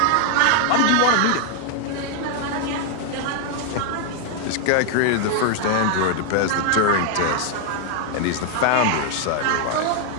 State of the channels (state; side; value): different; both; correlation 0.00